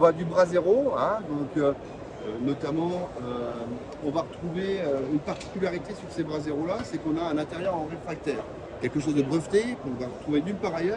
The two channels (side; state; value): both; identical; correlation 1.00